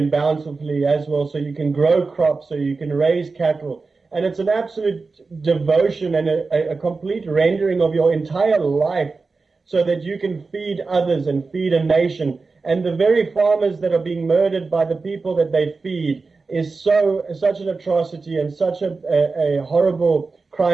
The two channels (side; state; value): left; quieter; 4.1 dB